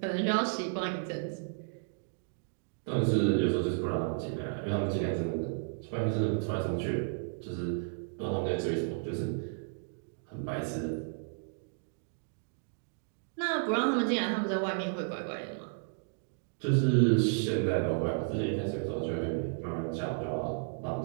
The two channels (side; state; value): left; silent; digital silence